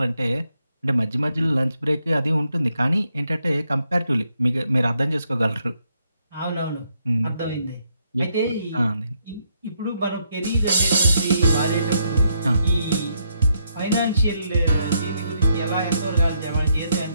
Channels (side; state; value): both; inverted; correlation -0.77